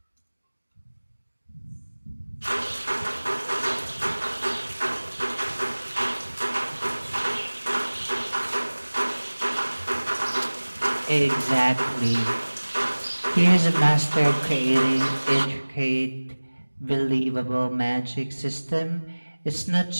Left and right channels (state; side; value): inverted; both; correlation -1.00